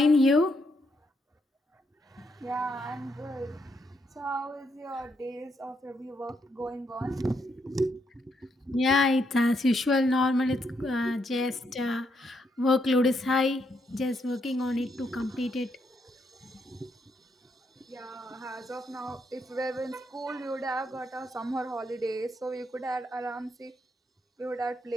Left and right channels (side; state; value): both; normal; correlation 0.77